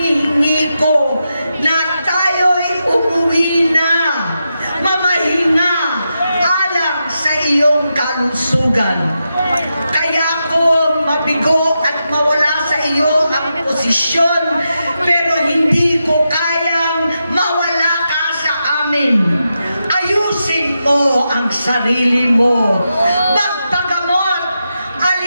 ko na tayo'y umuwi na, mamahinga alang sa iyong kalusugan. Kaya ko mabigo at mawala sa iyo ang posisyon, pero hindi ko kayang mawala ka sa amin. Ayusin mo ang sarili mo. Magpagamot,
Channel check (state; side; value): inverted; both; correlation -0.87